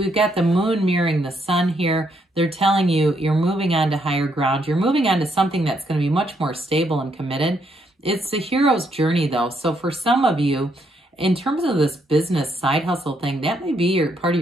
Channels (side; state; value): both; normal; correlation 0.74